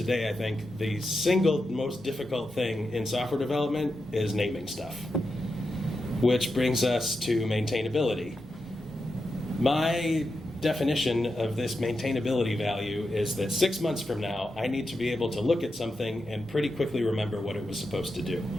I think, the single most difficult thing in software development is naming stuff, which brings us to maintainability. My definition of this maintainability value is that 6 months from now, I need to be able to look at something and pretty quickly remember what it was supposed to do.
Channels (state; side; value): normal; both; correlation 0.88